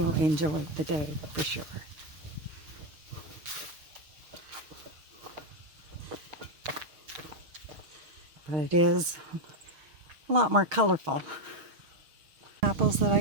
enjoy the day for sure. but it is a lot more colorful. Apples that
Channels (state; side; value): late; left; 6.4 ms